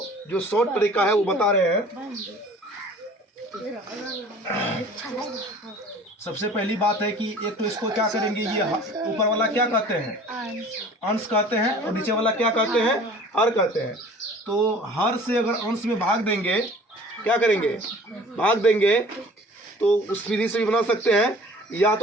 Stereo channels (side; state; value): both; normal; correlation 0.47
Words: जो शॉर्ट तरीका है वो बता रहे हैं। सबसे पहली बात है कि एक तो इसको क्या करेंगे, ये ऊपर वाला क्या कहते हैं, अंश कहते हैं, और नीचे वाला क्या कहते हैं, हर कहते हैं। तो हर से अगर अंश में भाग देंगे, क्या करेंगे, भाग देंगे, तो उस विधि से भी बना सकते हैं। या